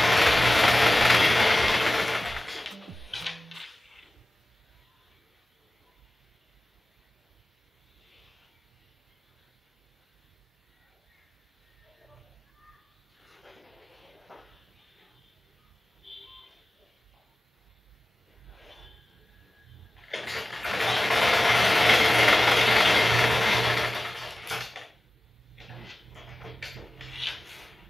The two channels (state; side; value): normal; both; correlation 0.96